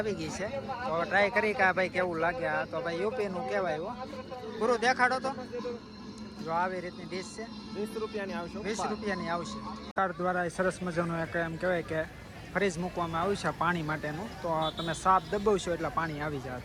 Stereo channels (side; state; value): both; identical; correlation 1.00